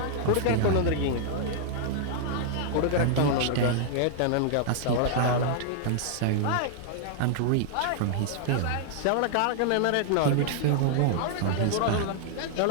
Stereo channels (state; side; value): different; both; correlation -0.01